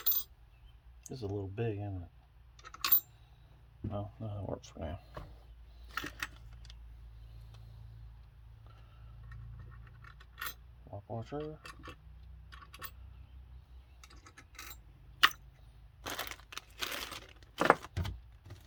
This is a little big, isn't it? No, that works for now. Lock washer.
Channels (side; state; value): both; identical; correlation 1.00